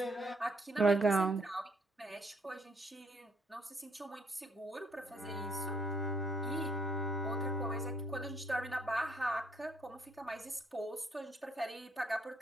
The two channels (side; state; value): both; normal; correlation 0.69